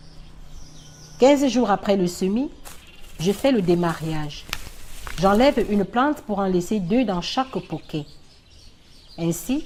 « 15 jours après le semis, je fais le démariage. J'enlève une plante pour en laisser 2 dans chaque poquet. Ainsi,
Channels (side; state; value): both; identical; correlation 1.00